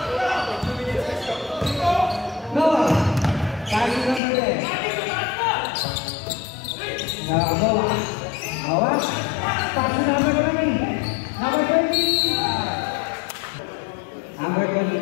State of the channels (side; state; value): right; drops out; at 4.2 s